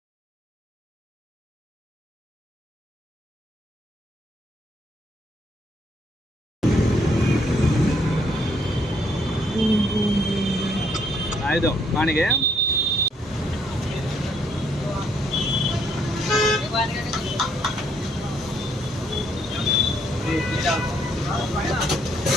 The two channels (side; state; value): both; normal; correlation 0.70